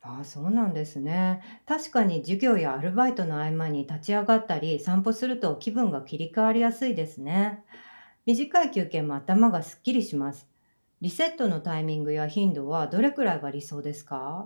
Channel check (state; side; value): inverted; both; correlation -1.00